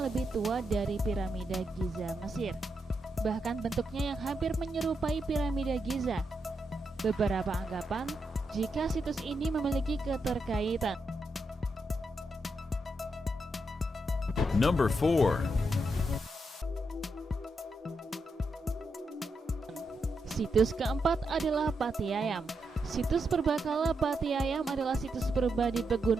tua dari piramida Giza Mesir. Bahkan bentuknya yang hampir menyerupai piramida Giza. Beberapa anggapan jika situs ini memiliki keterkaitan. Number 4. Situs keempat adalah Pati Ayam. Situs purbakala Pati Ayam adalah situs purba di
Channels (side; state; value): both; normal; correlation 0.83